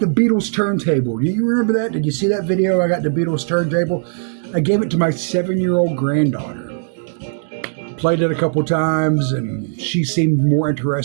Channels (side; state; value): left; silent; digital silence